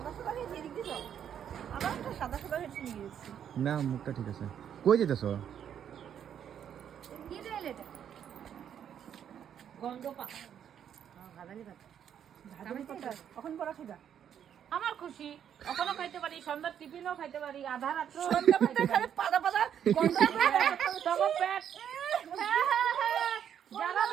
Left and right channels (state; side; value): quieter; left; 9.1 dB